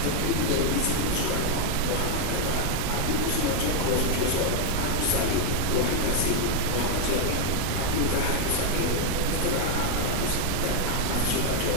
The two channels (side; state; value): both; different; correlation 0.00